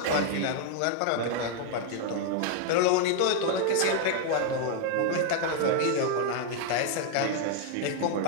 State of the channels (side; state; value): both; different; correlation 0.00